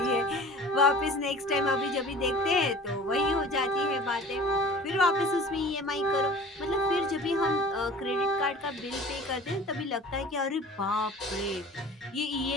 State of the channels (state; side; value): normal; both; correlation 0.43